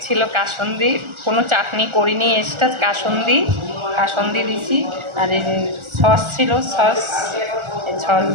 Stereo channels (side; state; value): left; late; 1.4 ms